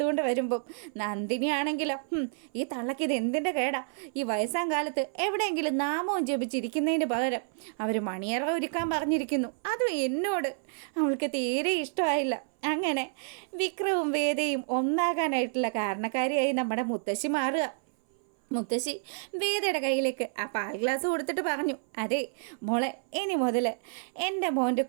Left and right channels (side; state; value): left; silent; 58 dB below the other